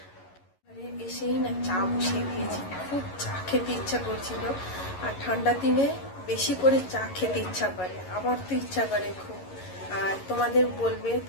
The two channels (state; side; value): late; right; 11 ms